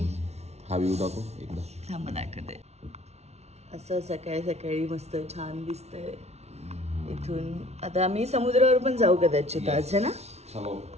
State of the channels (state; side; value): late; left; 0.31 ms